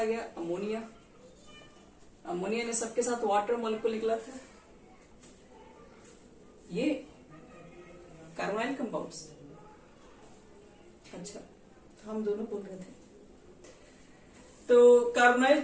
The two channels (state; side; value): identical; both; correlation 1.00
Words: गया अमोनिया। अमोनिया ने सबके साथ वाटर मॉलिक्यूल निकला था, ये कार्बोनाइल कंपाउंड्स। अच्छा, हम दोनों बोल रहे थे। तो कार्बोनाइल